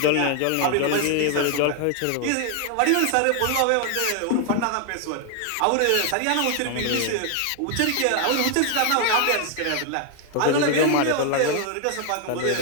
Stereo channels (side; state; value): both; different; correlation 0.00